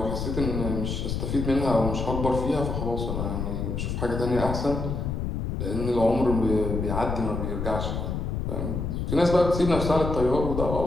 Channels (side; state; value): left; noise; rumble, 3 dB below the sound